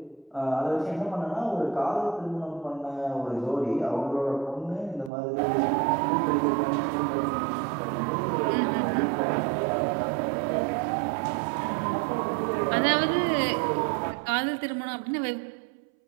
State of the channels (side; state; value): left; drops out; at 5.1 s